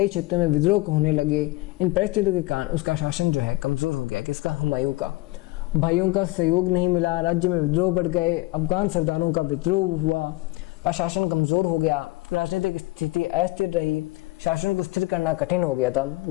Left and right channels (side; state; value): right; quieter; 20.9 dB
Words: क्षेत्रों में विद्रोह होने लगे। इन परिस्थितियों के कारण उसका शासन जो है कमजोर हो गया। किसका? हुमायूं का। भाइयों का सहयोग नहीं मिला, राज्य में विद्रोह बढ़ गए, अफगान सरदारों का विद्रोह हुआ और शासन कमजोर हो गया, राजनीतिक स्थिति अस्थिर रही, शासन को स्थिर करना कठिन हो गया था।